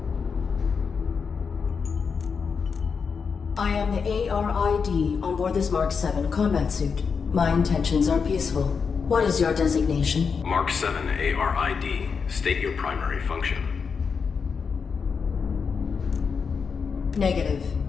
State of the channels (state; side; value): quieter; right; 5.7 dB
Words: I am the ARID on board this Mark 7 combat suit. My intentions are peaceful. What is your designation? Mark 7 ARID, state your primary function.